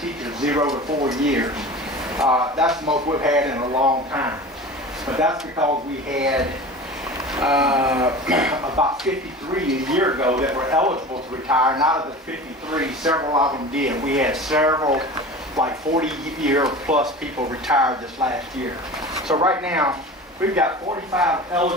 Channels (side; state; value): both; normal; correlation 0.35